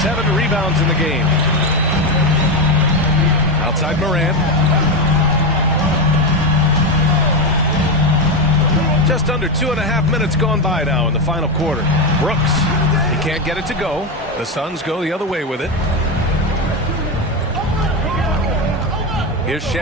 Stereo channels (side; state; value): both; normal; correlation 0.12